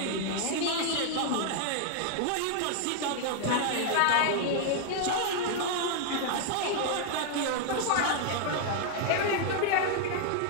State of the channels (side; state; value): both; different; correlation 0.00